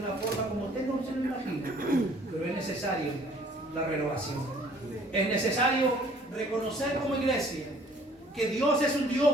forma como usted no se lo imagina. Pero es necesario la renovación. Es necesario reconocer como iglesia que Dios es un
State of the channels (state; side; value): normal; both; correlation 0.56